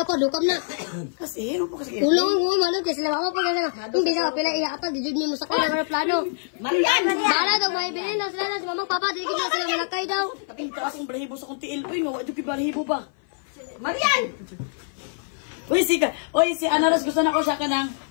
pa, dukam na. Kasi, ano po kasi? Tulungan mo, manong, kasi mama pa kasi na. Hindi sa kapila, iyaapag, dijud mo sa kanya ng plano. Marian! Bala daw, may bilhin na sila na, si mamang papa, di na sila malakay daw. Kaping taas ang balahibo sa kong tiil. Uy, nga, ito balahibo ba? Marian! Uy, si Ana Rose, gusto na ko siya ka ng,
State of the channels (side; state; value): right; silent; 55 dB below the other